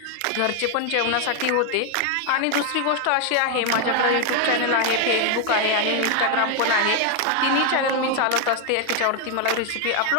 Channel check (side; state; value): both; different; correlation 0.01